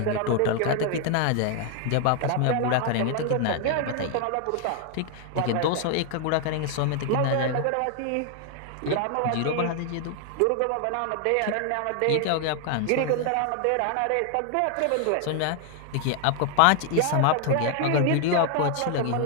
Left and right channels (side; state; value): both; different; correlation 0.00